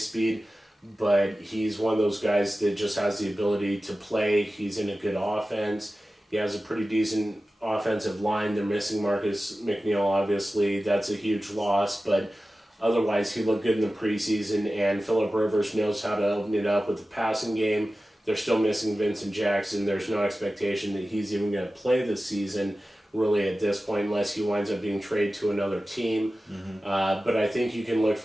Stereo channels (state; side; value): normal; both; correlation 0.95